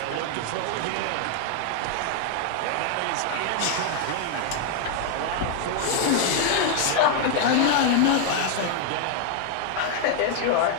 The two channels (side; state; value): both; different; correlation 0.00